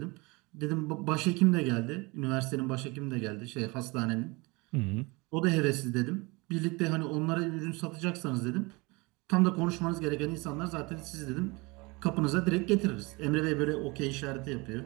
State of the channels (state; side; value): quieter; left; 25.9 dB